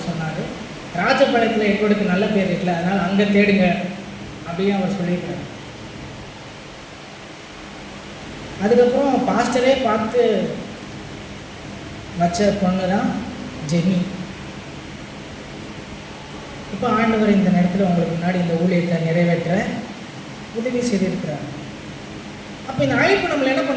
சொன்னார், ராஜபாளையத்தில் எட்வர்டுக்கு நல்ல பேர் இருக்குல்ல, அதனால் அங்கே தேடுங்க அப்படின்னு அவர் சொல்லியிருக்காரு. அதுக்கப்புறம் பாஸ்டரே பார்த்து வச்ச பொண்ணு தான் ஜெனி. இப்போ ஆண்டவர் இந்த நேரத்தில் உங்களுக்கு முன்னாடி இந்த ஊழியத்தை நிறைவேற்ற உதவி செய்திருக்கிறார். அப்போ இந்த அழைப்பு நம்மளை என்ன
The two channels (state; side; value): identical; both; correlation 1.00